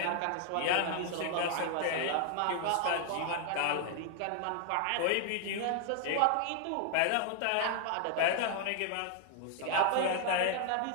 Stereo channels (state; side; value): different; both; correlation 0.00